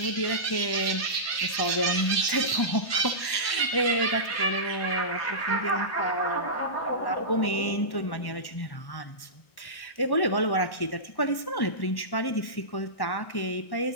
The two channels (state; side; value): late; right; 1.1 ms